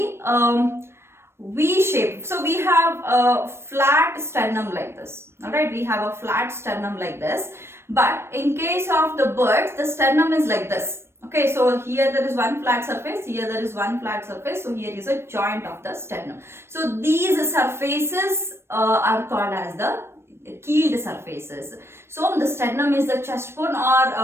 V shape. So we have a flat sternum like this. Alright, we have a flat sternum like this. But in case of the birds, the sternum is like this. Okay, so here there is one flat surface, here there is one flat surface, so here is a joint of the sternum. So these surfaces are called as the keeled surfaces. So the sternum is the chest bone,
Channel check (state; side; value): late; left; 0.12 ms